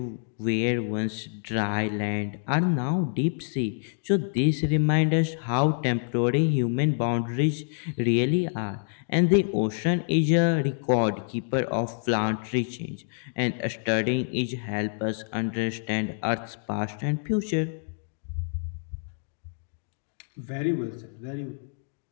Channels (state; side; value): silent; right; digital silence